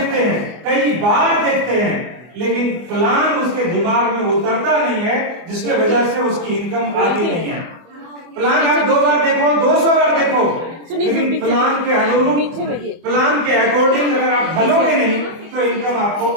हैं, कई बार देखते हैं, लेकिन प्लान उसके दिमाग में उतरता नहीं है, जिसके वजह से उसकी इनकम आती नहीं है। प्लान आप 2 बार देखो, 200 बार देखो, लेकिन प्लान के अनुरूप, प्लान के अकॉर्डिंग अगर आप ढलोगे नहीं तो इनकम आपको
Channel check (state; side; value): late; left; 24 ms